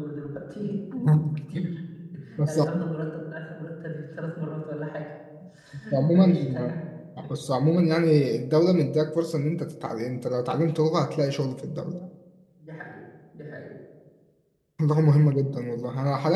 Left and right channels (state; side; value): identical; both; correlation 1.00